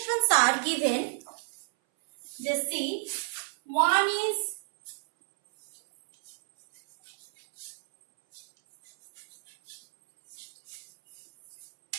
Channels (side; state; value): left; silent; 57 dB below the other